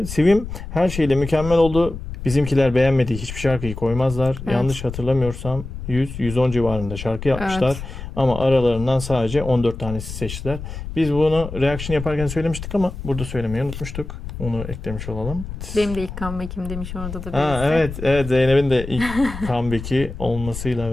Sivim her şeyle mükemmel oldu. Bizimkiler beğenmediği hiçbir şarkıyı koymazlar. Evet. Yanlış hatırlamıyorsam 100-110 civarında şarkı yapmışlar. Evet. Ama aralarından sadece 14 tanesi seçtiler. Biz bunu reaction yaparken söylemiştik ama burada söylemeyi unutmuştuk. Onu eklemiş olalım. Benim de ilk comeback'im demiş orada da Ha, birisi. evet Zeynep'in de ilk comeback'i olmasıyla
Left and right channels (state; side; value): noise; left; rumble, 9 dB below the sound